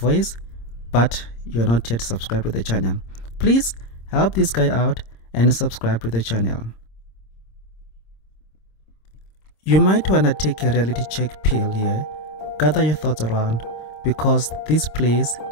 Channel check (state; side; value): late; right; 26 ms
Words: but you are not yet subscribed to the channel. Please help this guy out and subscribe to the channel. You might want to take a reality check pill here. Gather your thoughts around, because this place